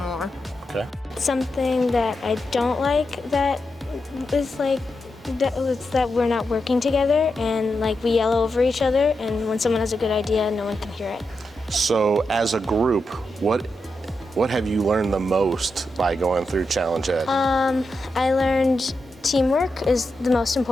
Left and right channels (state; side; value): normal; both; correlation 0.87